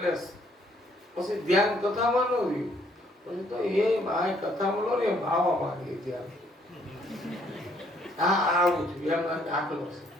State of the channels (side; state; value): both; normal; correlation 0.66